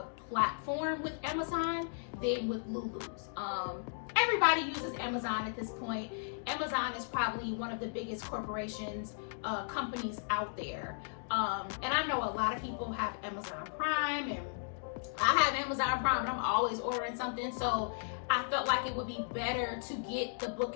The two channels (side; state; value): right; silent; digital silence